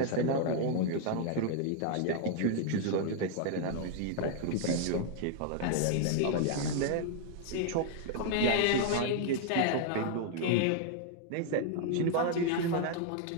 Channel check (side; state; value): both; different; correlation 0.00